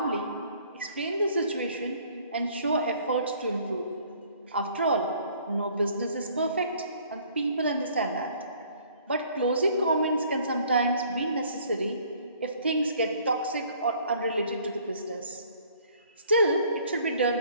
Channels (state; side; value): inverted; both; correlation -0.58